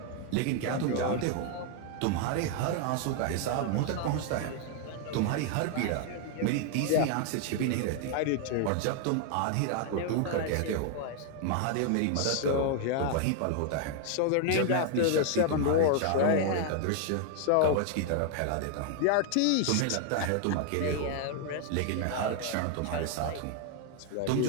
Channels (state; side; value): different; both; correlation 0.00